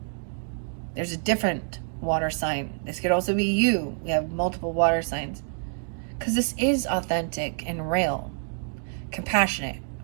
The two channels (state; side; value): silent; left; digital silence